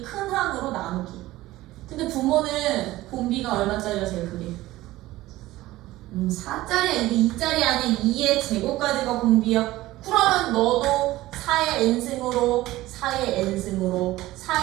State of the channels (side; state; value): left; quieter; 17.1 dB